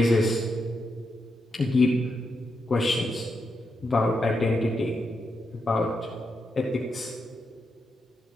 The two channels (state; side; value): normal; both; correlation 0.84